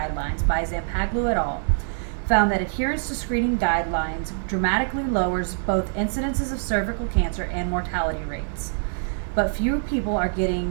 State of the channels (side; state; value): left; silent; 62 dB below the other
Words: by Zampaglu et al. Found that adherence to screening guidelines dramatically lowers both incidences of cervical cancer and mortality rates. But fewer people are